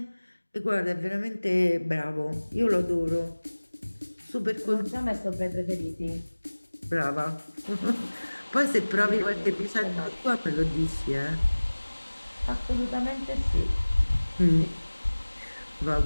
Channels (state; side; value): inverted; both; correlation -1.00